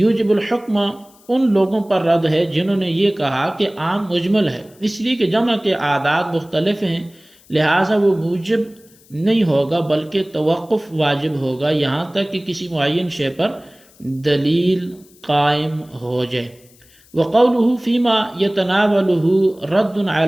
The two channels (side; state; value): left; noise; hiss, 28 dB below the sound